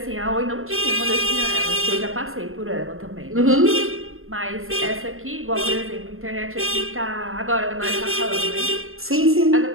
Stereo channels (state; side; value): late; left; 0.61 ms